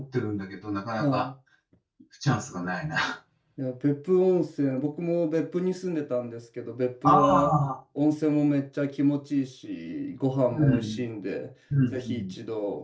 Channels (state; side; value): identical; both; correlation 1.00